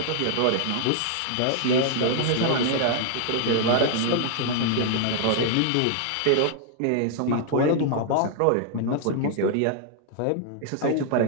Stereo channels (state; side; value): different; both; correlation 0.00